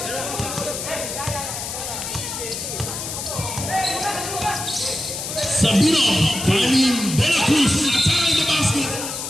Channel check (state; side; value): noise; left; hiss, 6 dB below the sound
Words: Sabino finding De La Cruz attacking the basket.